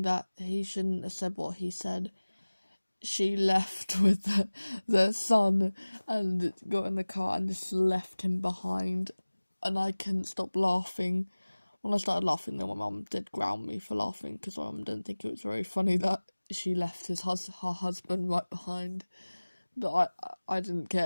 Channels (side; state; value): both; inverted; correlation -1.00